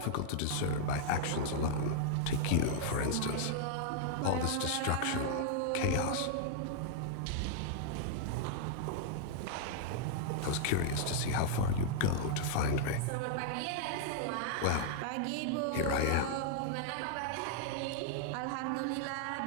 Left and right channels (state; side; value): different; both; correlation -0.01